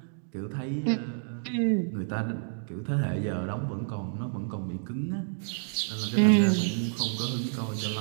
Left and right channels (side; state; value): left; silent; digital silence